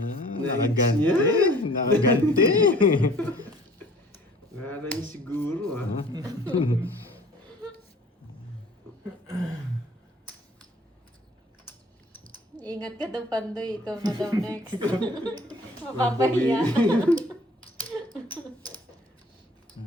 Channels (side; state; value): both; normal; correlation 0.51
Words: Nakaganti. Nakaganti. Wala niya siguro, ha? Ingat ka daw, Pandoy. Ikaw na daw next. Mapapahiya.